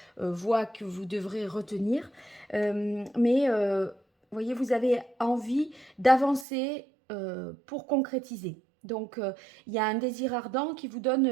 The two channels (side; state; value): left; drops out; at 6.5 s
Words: voie que vous devrez retenir. Mais, voyez, vous avez envie d'avancer pour concrétiser. Donc, il y a un désir ardent qui vous